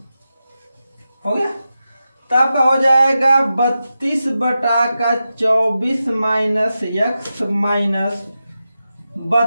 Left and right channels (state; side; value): inverted; both; correlation -0.91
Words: हो गया। तो आपका हो जाएगा 32 बटा का 24 माइनस एक्स माइनस